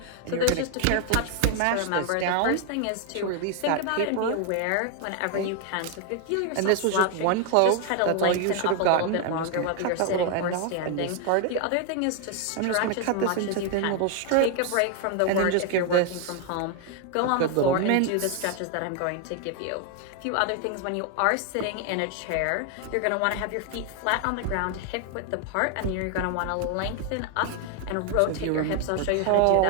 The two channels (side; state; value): both; different; correlation 0.01